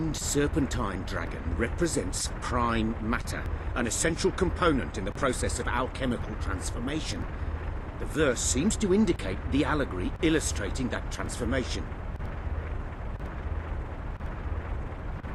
serpentine dragon represents prime matter, an essential component in the process of alchemical transformation. The verse seems to indicate the allegory illustrating that transformation.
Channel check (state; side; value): identical; both; correlation 1.00